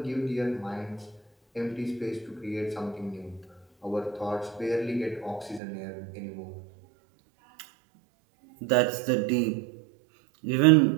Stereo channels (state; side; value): drops out; left; at 5.6 s